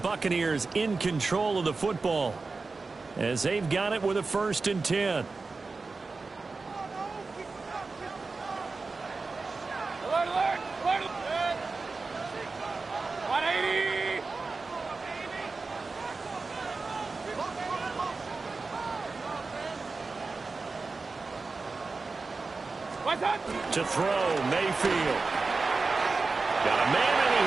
in control of the football as they've got it with a 1st and 10. To throw, Mayfield. Got a man, and he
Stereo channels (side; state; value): left; quieter; 4.0 dB